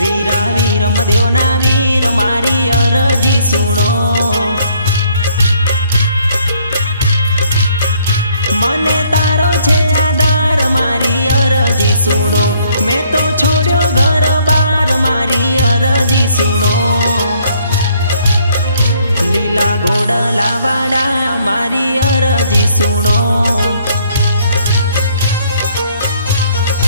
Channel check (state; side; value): inverted; both; correlation -0.65